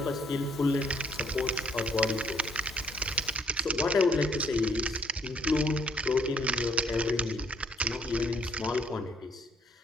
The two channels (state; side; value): normal; both; correlation 0.64